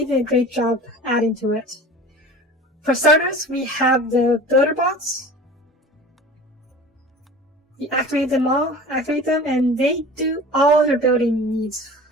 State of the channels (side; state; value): both; normal; correlation 0.39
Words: did a great job adding to it. For starters, we have the builder bots. You activate them, and they do all your building needs.